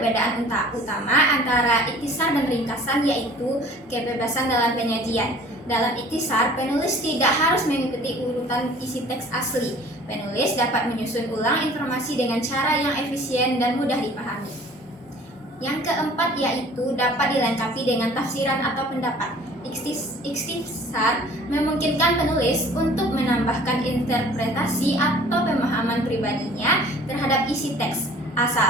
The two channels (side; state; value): both; normal; correlation 0.50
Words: utama antara ikhtisar dan ringkasan yaitu kebebasan dalam penyajian. Dalam ikhtisar, penulis tidak harus mengikuti urutan isi teks asli. Penulis dapat menyusun ulang informasi dengan cara yang efisien dan mudah dipahami. Yang keempat yaitu dapat dilengkapi dengan tafsiran atau pendapat. Ikhtisar memungkinkan penulis untuk menambahkan interpretasi atau pemahaman pribadinya terhadap isi teks,